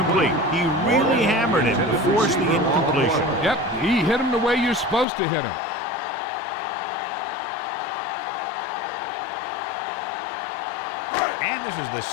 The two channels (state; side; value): drops out; right; at 5.1 s